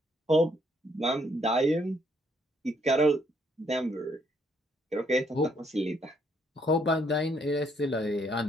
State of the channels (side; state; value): both; normal; correlation 0.70